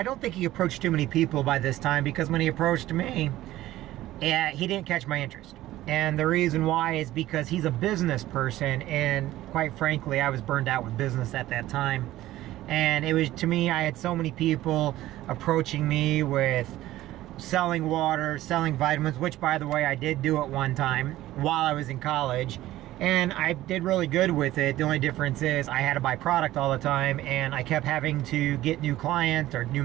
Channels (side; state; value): left; quieter; 15.4 dB